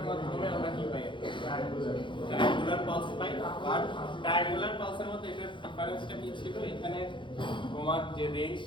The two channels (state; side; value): late; right; 0.23 ms